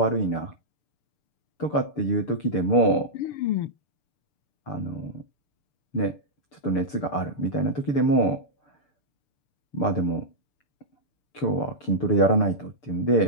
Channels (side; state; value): right; late; 6.8 ms